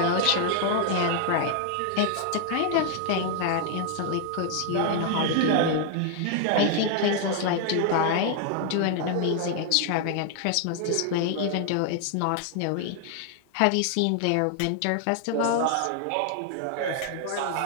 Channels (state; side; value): different; both; correlation 0.00